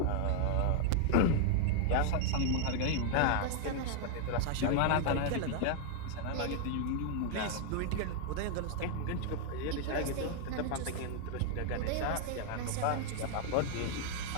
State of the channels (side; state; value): both; different; correlation 0.00